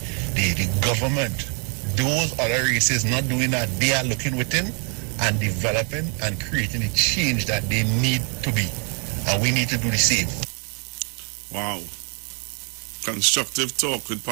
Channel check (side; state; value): left; quieter; 38.3 dB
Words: government. Those other races not doing that. They are looking within and developing and creating the change that they need to be. And we need to do the same. Wow. Constructive talk with